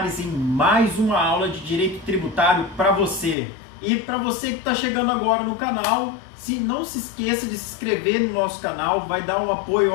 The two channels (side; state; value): right; drops out; at 3.4 s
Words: em mais uma aula de Direito Tributário para você. E para você que está chegando agora no canal, não se esqueça de se inscrever no nosso canal, vai dar um apoio